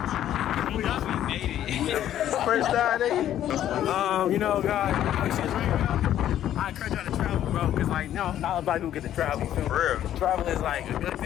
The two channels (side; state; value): right; quieter; 11.5 dB